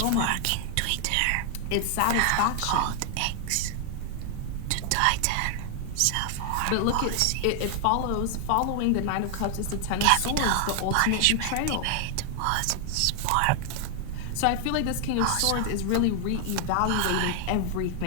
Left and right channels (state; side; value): different; both; correlation 0.00